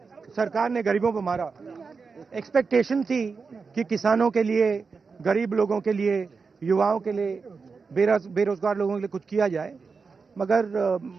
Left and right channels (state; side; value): quieter; left; 4.9 dB